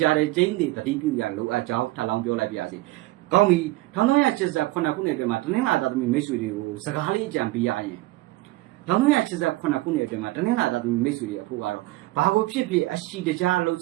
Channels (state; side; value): quieter; left; 19.1 dB